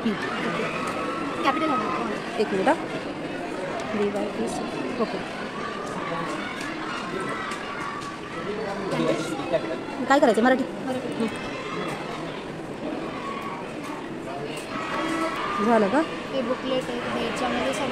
कॅपिटल एक मिनिट. DYPCP okay. काय करायचं मराठी झालं का? हे बुकलेट आहे. याच्यामध्ये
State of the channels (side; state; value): both; identical; correlation 1.00